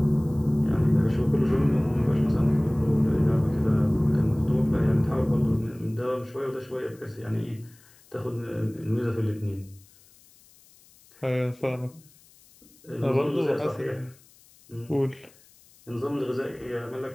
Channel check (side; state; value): left; noise; hiss, 28 dB below the sound